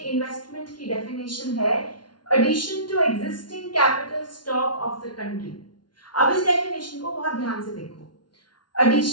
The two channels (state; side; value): late; right; 0.70 ms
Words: की डेफिनेशन है addition to existing capital stock of the country. अब इस डेफिनेशन को बहुत ध्यान से देखो।